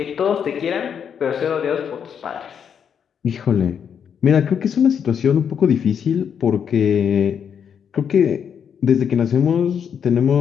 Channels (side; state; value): right; quieter; 7.7 dB